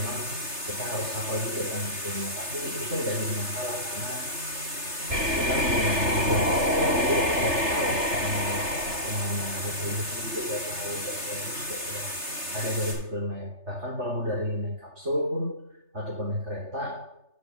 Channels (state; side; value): late; left; 3.3 ms